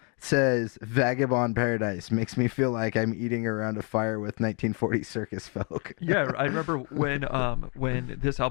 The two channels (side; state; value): right; quieter; 35.7 dB